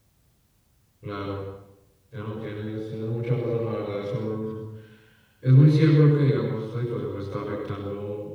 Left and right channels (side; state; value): both; identical; correlation 1.00